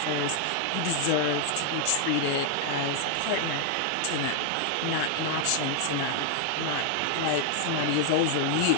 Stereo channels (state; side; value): different; both; correlation 0.00